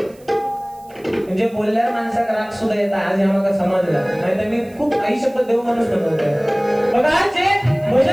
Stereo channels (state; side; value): noise; right; hiss, 28 dB below the sound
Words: म्हणजे बोलल्यावर माणसाक राग सुद्धा येतात. आज आम्हाला समजला नाही तर मी खूप आई शपथ देऊ माणूस बनवतोय. बघा जे